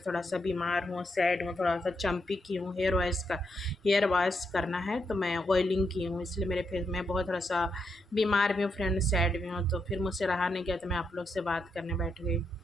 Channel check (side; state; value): both; normal; correlation 0.82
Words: थोड़ा सा बीमार हूँ, सैड हूँ, थोड़ा सा चंपी की हूँ। हेयर वॉश करना है, तो मैं ऑयलिंग की हूँ, इसलिए मेरे फेस में बहुत थोड़ा सा बीमार भी हूँ फ्रेंड, सैड भी हूँ। तो फिर मुझसे रहा नहीं गया, तो मैं आप लोग से बात करने बैठ गई।